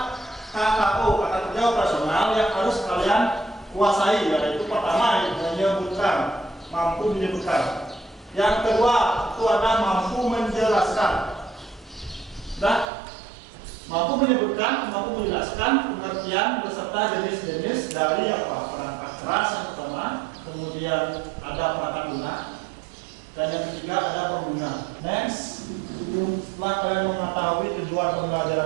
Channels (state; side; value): drops out; left; at 12.9 s